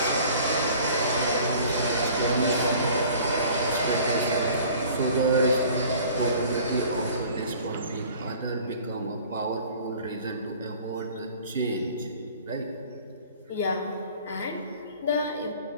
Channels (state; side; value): inverted; both; correlation -0.48